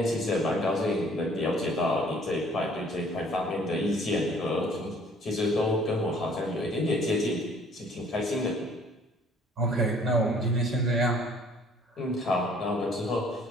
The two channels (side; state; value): both; normal; correlation 0.57